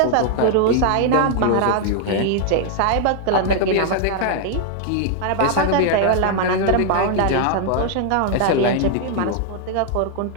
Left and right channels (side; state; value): both; different; correlation 0.00